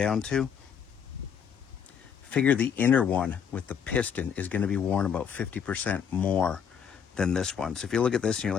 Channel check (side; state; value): right; quieter; 7.6 dB